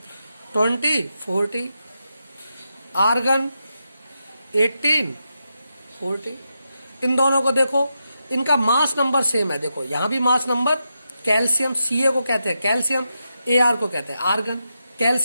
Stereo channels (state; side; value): inverted; both; correlation -0.86